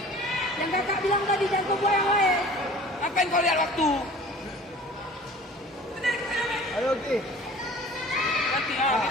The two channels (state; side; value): normal; both; correlation 0.45